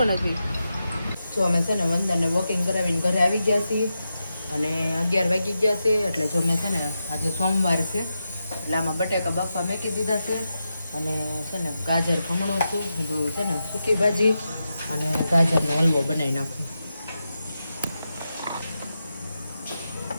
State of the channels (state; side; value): inverted; both; correlation -0.89